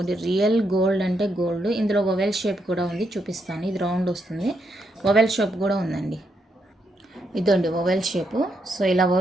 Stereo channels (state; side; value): normal; both; correlation 0.79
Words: రియల్ గోల్డ్ అంటే గోల్డ్. ఇందులో ఓవెల్ షేప్ కూడా ఉంది, చూపిస్తాను. ఇది రౌండ్ వస్తుంది, ఓవెల్ షేప్ కూడా ఉందండి. ఇదండి ఓవెల్ షేపు. సో ఇలా